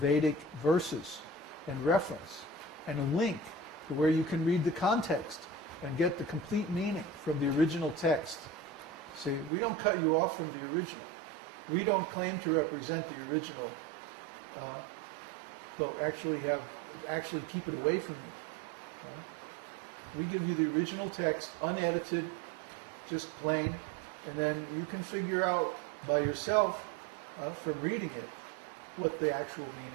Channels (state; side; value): drops out; left; at 9.5 s